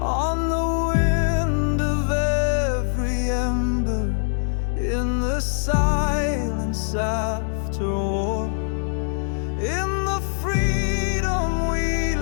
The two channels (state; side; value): silent; right; 63 dB below the other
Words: the wind of every ember, in the silence after war, in the freedom we